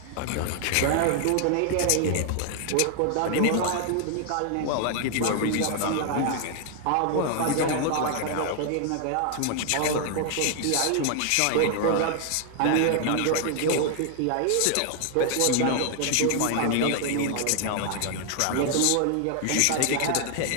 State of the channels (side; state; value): both; different; correlation 0.00